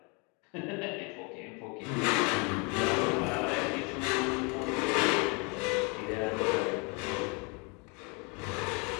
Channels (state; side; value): quieter; right; 32.0 dB